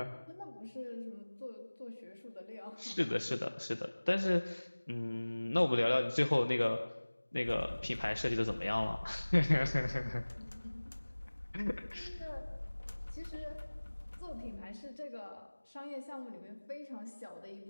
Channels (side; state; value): both; inverted; correlation -1.00